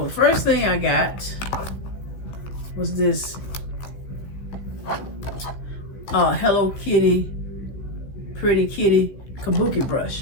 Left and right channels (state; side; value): late; right; 15 ms